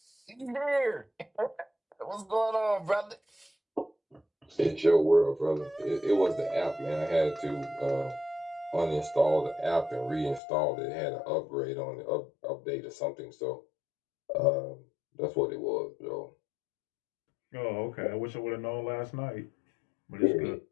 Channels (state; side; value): drops out; right; at 10.4 s